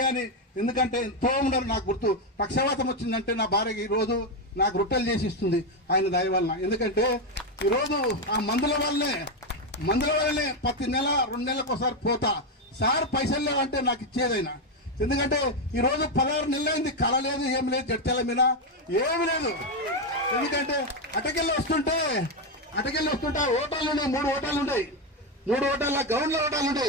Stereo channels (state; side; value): normal; both; correlation 0.07